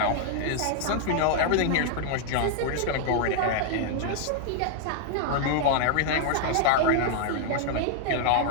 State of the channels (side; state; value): both; different; correlation -0.01